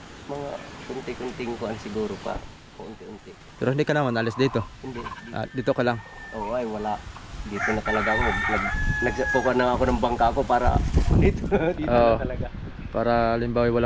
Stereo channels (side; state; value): both; identical; correlation 1.00